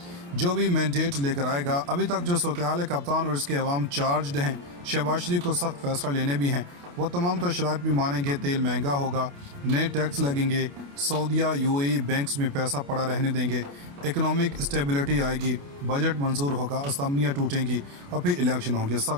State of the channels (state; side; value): late; left; 28 ms